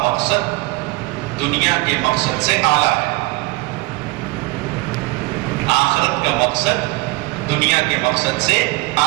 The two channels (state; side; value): quieter; left; 23.2 dB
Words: مقصد دنیا کے مقصد سے اعلیٰ ہے، آخرت کا مقصد دنیا کے مقصد سے